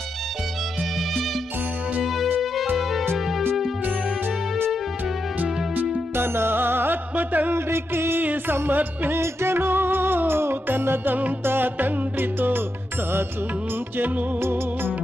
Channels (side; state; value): both; normal; correlation 0.86